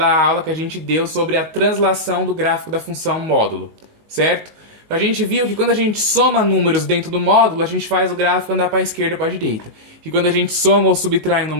aula que a gente deu sobre a translação do gráfico da função módulo, certo? A gente viu que quando a gente soma números dentro do módulo, a gente faz o gráfico andar para a esquerda ou para a direita. Que quando a gente soma ou subtrai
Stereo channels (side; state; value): left; late; 19 ms